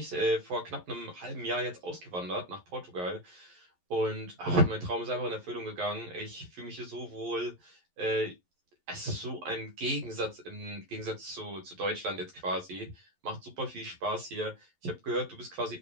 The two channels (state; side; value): late; left; 11 ms